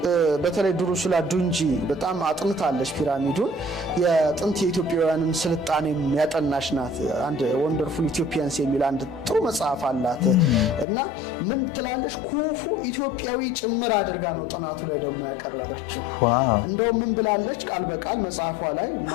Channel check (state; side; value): drops out; right; at 10.9 s